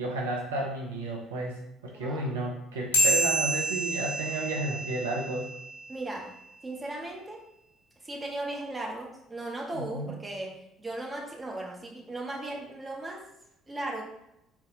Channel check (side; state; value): both; normal; correlation 0.53